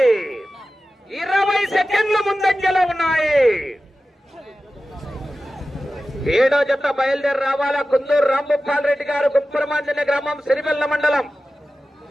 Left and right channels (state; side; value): normal; both; correlation 0.94